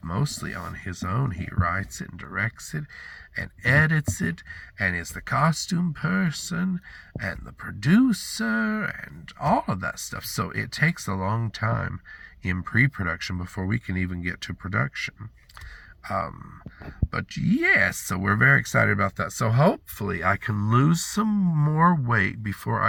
mostly on his own. He writes it and directs it and edits it and is the costume person and the producer and all of that stuff. So it takes a long time in pre-production before we can even get to production. But yes, so we're very excited about that. So hopefully I can lose some more weight before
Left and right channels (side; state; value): both; identical; correlation 1.00